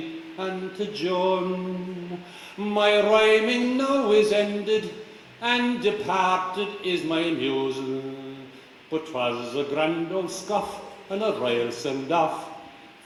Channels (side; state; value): both; identical; correlation 1.00